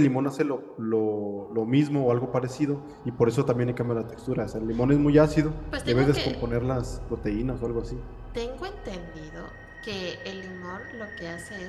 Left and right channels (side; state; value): both; identical; correlation 1.00